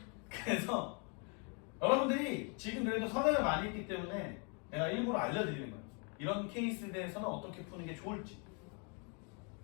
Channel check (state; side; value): quieter; right; 36.5 dB